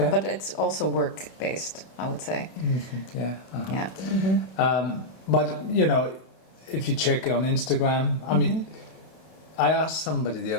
But it's also work based, I would say. Mm-hmm. Yeah. Uh-huh. Yeah. Mm-hmm. But if you check on Instagram, I mean, I asked somebody the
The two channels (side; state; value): right; late; 31 ms